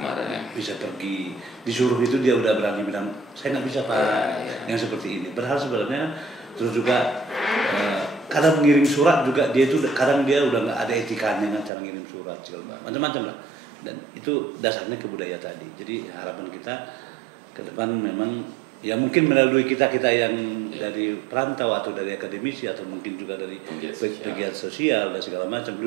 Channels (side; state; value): left; drops out; at 11.7 s